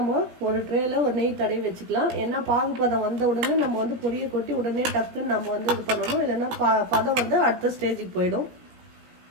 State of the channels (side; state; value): left; late; 17 ms